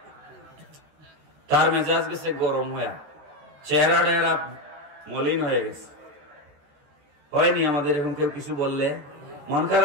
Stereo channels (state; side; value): late; left; 14 ms